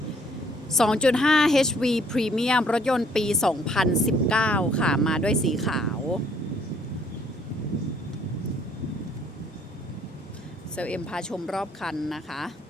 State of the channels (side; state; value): both; normal; correlation 0.64